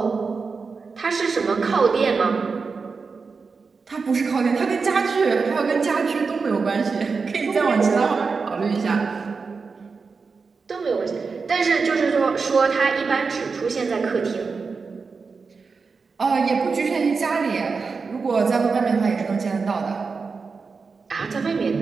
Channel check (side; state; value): left; quieter; 4.8 dB